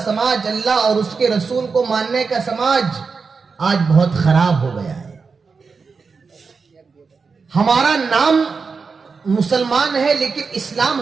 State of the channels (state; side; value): quieter; left; 4.9 dB